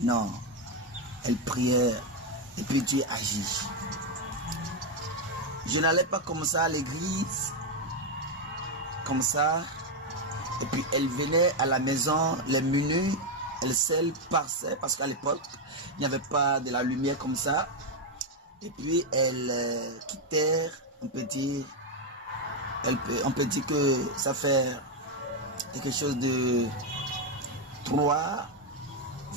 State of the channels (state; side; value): normal; both; correlation 0.04